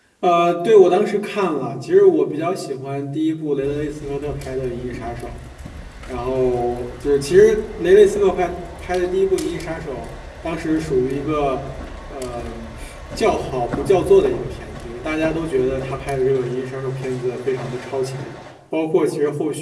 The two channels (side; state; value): both; identical; correlation 1.00